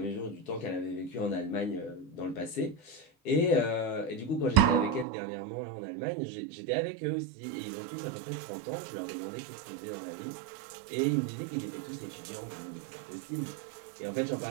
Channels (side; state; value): left; drops out; at 5.1 s